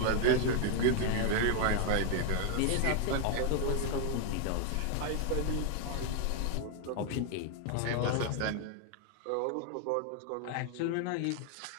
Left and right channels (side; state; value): both; different; correlation 0.00